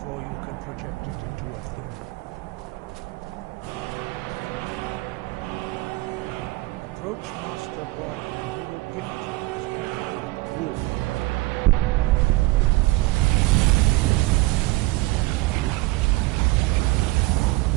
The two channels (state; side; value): quieter; left; 20.8 dB